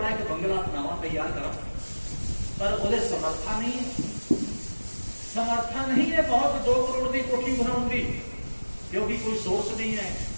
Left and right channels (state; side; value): inverted; both; correlation -1.00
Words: एक बंगला बनावा तैयार करा, पर वो समर्था नहीं है, समर्था नहीं है बहुत 2 करोड़ की कोठी बनाऊंगी, क्योंकि कोई सोर्स नहीं है,